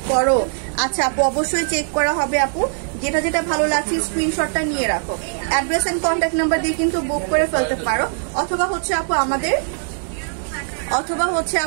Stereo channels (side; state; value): left; silent; digital silence